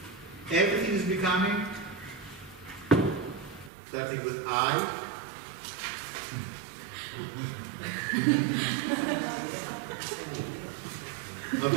Everything is becoming. Starting with I. Not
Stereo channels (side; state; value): left; drops out; at 3.7 s